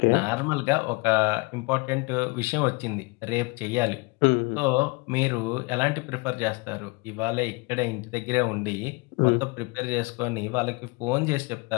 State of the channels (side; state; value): right; quieter; 27.8 dB